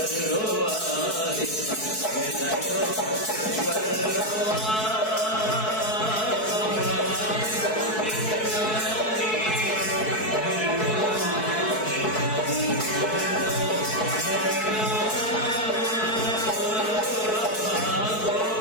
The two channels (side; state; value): right; late; 4.6 ms